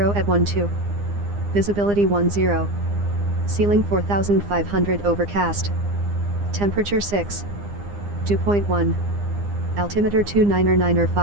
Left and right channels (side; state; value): left; late; 9.8 ms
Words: at 12. Visibility 10. Ceiling 4500 overcast. Temperature 6. 2.1. Altimeter